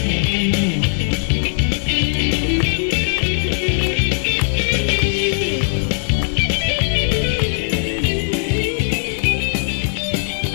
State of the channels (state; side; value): silent; right; 63 dB below the other